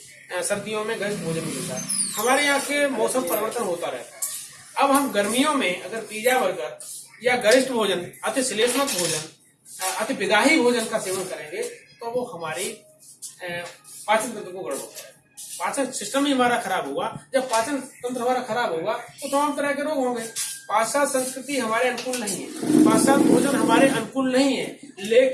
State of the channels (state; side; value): identical; both; correlation 1.00